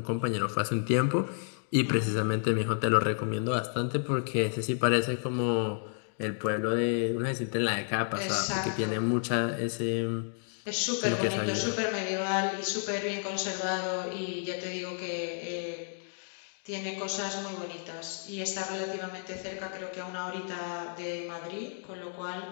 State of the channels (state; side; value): silent; right; digital silence